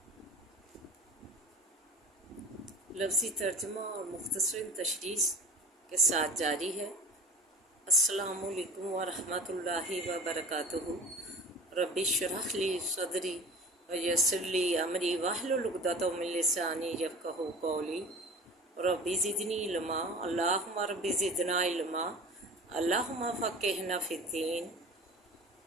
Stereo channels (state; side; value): normal; both; correlation 0.39